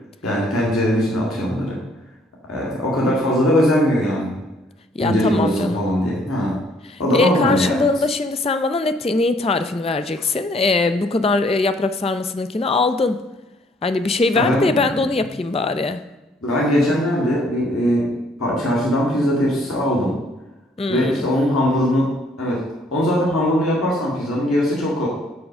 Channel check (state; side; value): normal; both; correlation 0.64